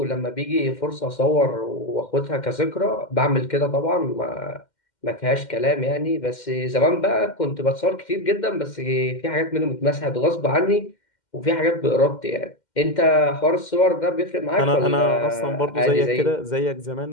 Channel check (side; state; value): right; late; 2.1 ms